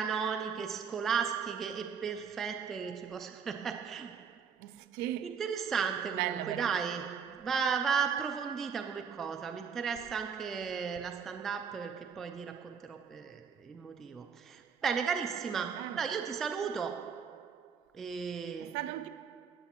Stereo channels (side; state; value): left; quieter; 6.6 dB